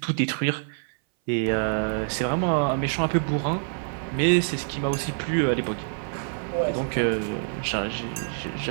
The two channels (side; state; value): left; silent; 58 dB below the other